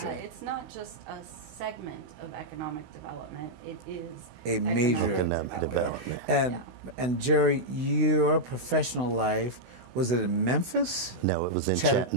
Yeah, it's not just a segment of economic development. It is a major economic development. And Jerry, your professional life, was it in Memphis? No, it was in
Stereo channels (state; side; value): late; left; 16 ms